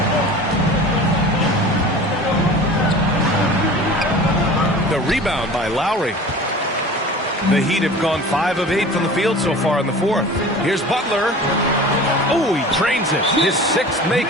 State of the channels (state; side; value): normal; both; correlation 0.39